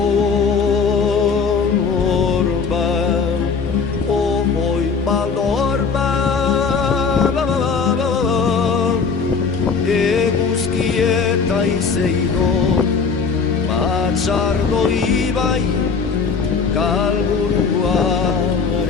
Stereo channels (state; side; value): quieter; right; 5.3 dB